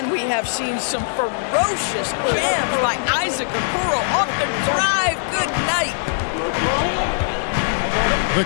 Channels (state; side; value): silent; right; digital silence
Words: we have seen some ferocious jams by Isaac Okoro off the drive. Good night. The